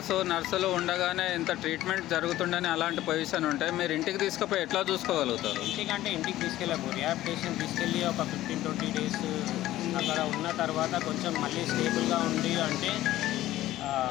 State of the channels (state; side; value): quieter; right; 14.9 dB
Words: నర్సులు ఉండగానే ఇంత ట్రీట్మెంట్ జరుగుతుండని అలాంటి పొజిషన్ ఉంటే మీరు ఇంటికి తీసుకుపోయి ఎట్లా చూసుకోగలుగుతారు? ఇంటికి తీసుకెళ్ళము. రిహాబిలిటేషన్ తీసుకెళ్ళి ఒక 15-20 డేస్ అక్కడ ఉన్న తర్వాత కొంచెం మళ్ళీ స్టేబుల్గా ఉంది అంటే